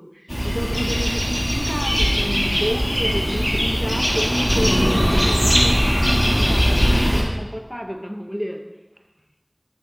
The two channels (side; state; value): both; identical; correlation 1.00